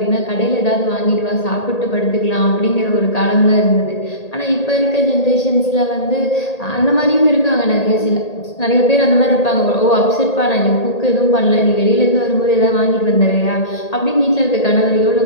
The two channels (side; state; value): right; late; 1.8 ms